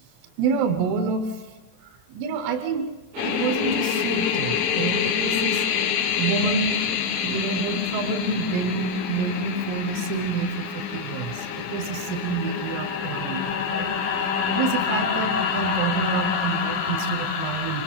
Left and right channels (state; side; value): late; left; 27 ms